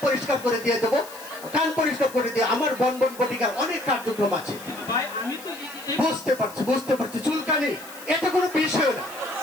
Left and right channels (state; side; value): noise; left; hiss, 17 dB below the sound